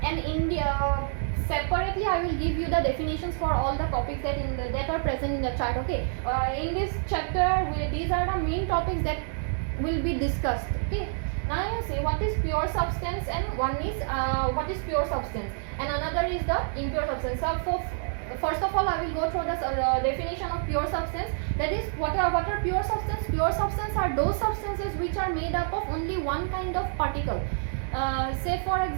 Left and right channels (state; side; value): silent; left; digital silence